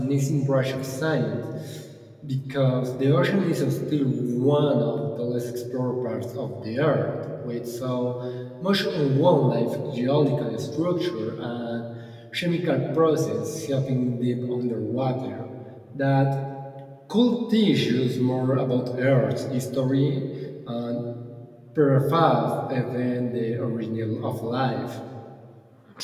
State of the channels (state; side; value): identical; both; correlation 1.00